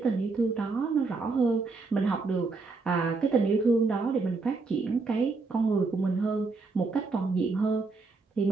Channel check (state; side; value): quieter; left; 4.0 dB